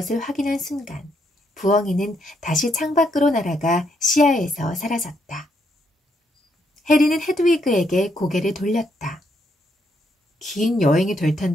확인한 순간 부엉이는 다시 창밖으로 날아가 시야에서 사라졌다. 해리는 헤드위그에게 고개를 돌렸다. 긴 여행이 될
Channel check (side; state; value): both; normal; correlation 0.76